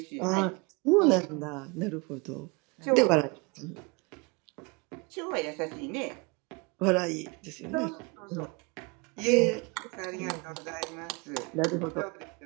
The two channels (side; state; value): left; quieter; 29.0 dB